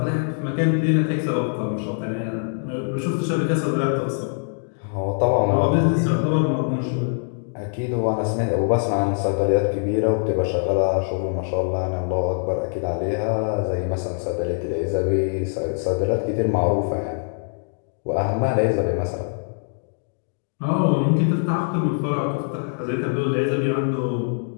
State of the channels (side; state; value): right; silent; 63 dB below the other